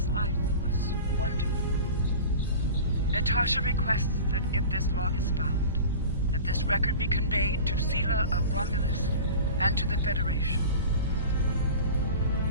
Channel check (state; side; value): inverted; both; correlation -0.35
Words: life was wonderful. Natasha requests that if this log is found, that this record be conveyed to Sela of Romulus and to the Federation.